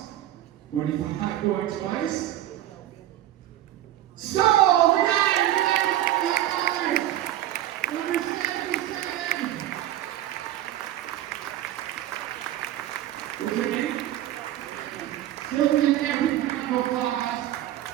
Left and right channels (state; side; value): quieter; left; 13.2 dB